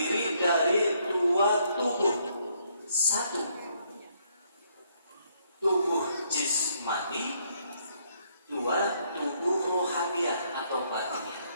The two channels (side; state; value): both; inverted; correlation -0.71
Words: dari dua tubuh. Satu, tubuh jismani. Dua, tubuh rohaniah atau batiniah.